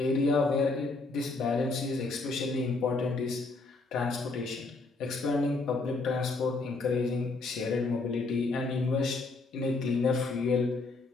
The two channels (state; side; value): quieter; right; 3.6 dB